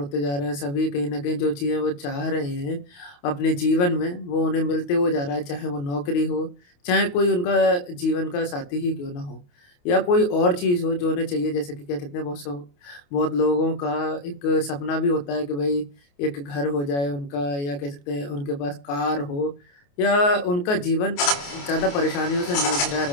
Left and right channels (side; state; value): right; late; 28 ms